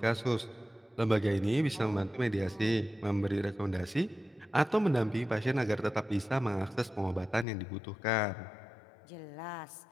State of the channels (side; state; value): right; drops out; at 7.5 s